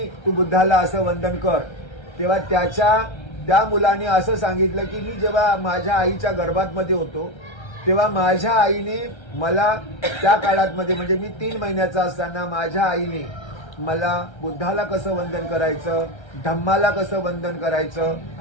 तू बुद्धाला असं वंदन कर. तेव्हा त्या मुलाने असं सांगितलं की मी जेव्हा माझ्या आईच्या गर्भातमध्ये होतो तेव्हा माझ्या आईने मला त्या काळातमध्ये म्हणजे मी 3 महिन्याचा असताना माझ्या आईने मला बुद्धाला कसं वंदन करायचं, धम्माला कसं वंदन करायचं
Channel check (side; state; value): right; late; 1.3 ms